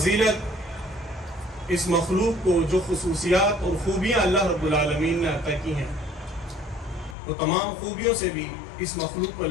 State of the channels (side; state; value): right; drops out; at 7.2 s